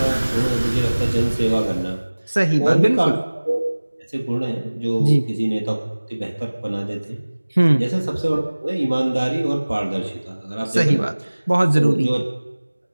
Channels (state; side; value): inverted; both; correlation -1.00